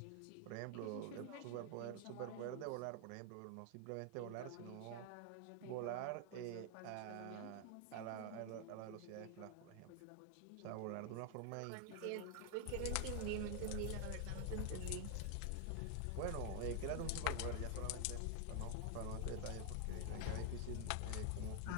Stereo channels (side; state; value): both; different; correlation 0.00